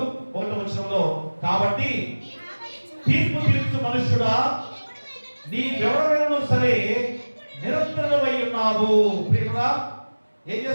1వ వచనంలో, కాబట్టి తీర్పు తీర్చు మనుష్యుడా నీవెవరైనా సరే నిరంతరమై ఉన్నావు. ప్రియరా, ఏం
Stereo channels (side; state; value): both; inverted; correlation -1.00